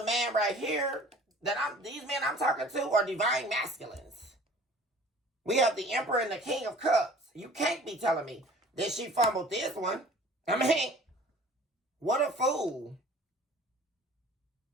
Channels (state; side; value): normal; both; correlation 0.48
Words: man right here these men I'm talking to are divine masculines. We have the Emperor and the King of Cups. You can't be telling me that she fumbled this one. I mean, what a fool.